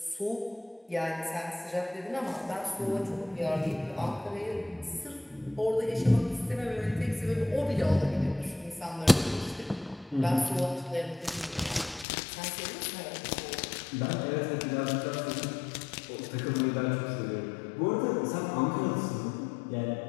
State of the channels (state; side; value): drops out; right; at 12.1 s